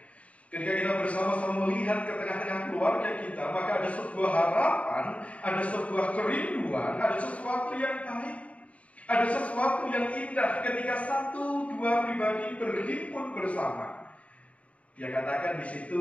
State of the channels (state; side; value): late; right; 0.066 ms